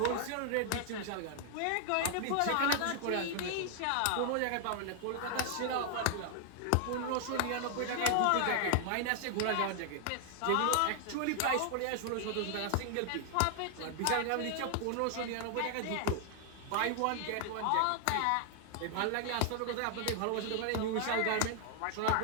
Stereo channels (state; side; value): different; both; correlation 0.00